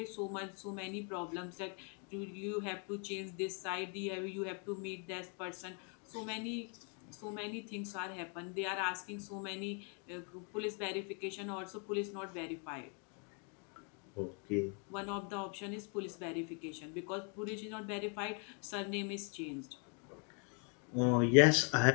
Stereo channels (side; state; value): right; quieter; 38.7 dB